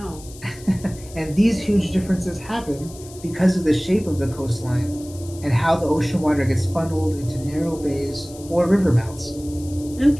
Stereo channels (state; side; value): noise; left; hiss, 19 dB below the sound